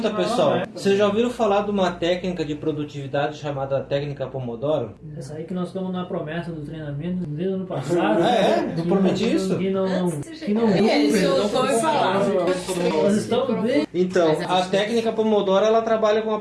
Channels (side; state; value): both; identical; correlation 1.00